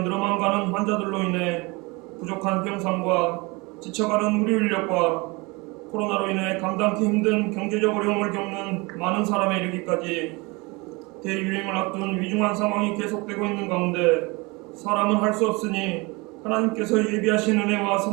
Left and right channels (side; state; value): left; quieter; 26.0 dB